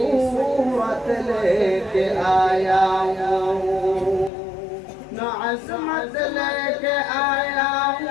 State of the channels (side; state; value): right; drops out; at 4.3 s